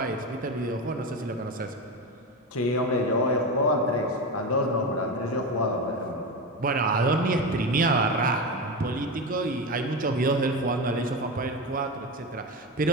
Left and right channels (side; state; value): both; normal; correlation 0.19